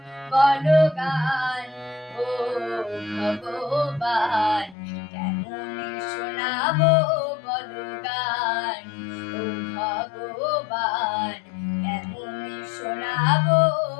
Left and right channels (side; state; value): right; drops out; at 4.8 s